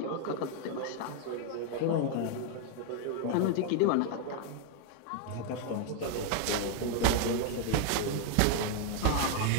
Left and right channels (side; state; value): both; different; correlation 0.00